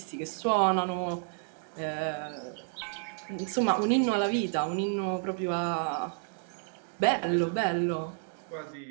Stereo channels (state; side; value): silent; left; 57 dB below the other